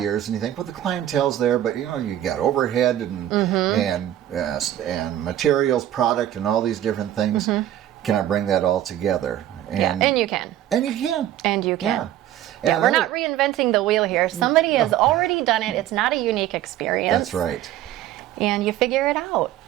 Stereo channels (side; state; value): left; quieter; 12.3 dB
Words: and you think, well, the clientele's there, but you got overhead and materials, product, and all these different things. Can I bring that all together? And you can. And you can. And you can. Yeah. We're not reinventing the wheel here. Somebody has already done it. It's not a unique experience. That's right. And you figure it out.